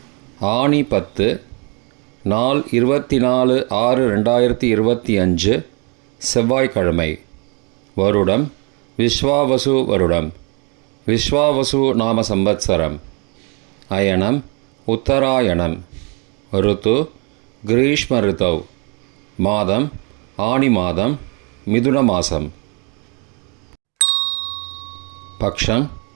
ஆனி 10, நாள் 24/6/2025, செவ்வாய்க்கிழமை. வருடம் விஸ்வாவசு வருடம். விஸ்வாவசு நாம சம்பத்சரம். அயனம் உத்தராயணம். ருத்து கிரீஷ்ம ருத்தவ். மாதம் ஆனி மாதம், மிதுன மாதம். பக்ஷம்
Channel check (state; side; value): quieter; left; 33.0 dB